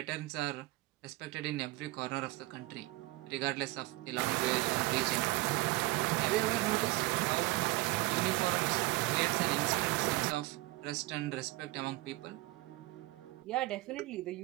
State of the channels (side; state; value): left; quieter; 19.9 dB